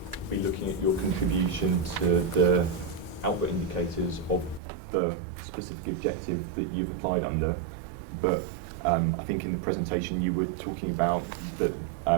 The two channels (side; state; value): left; drops out; at 4.6 s